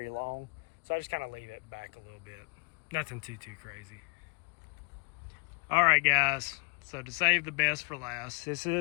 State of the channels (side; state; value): right; quieter; 34.9 dB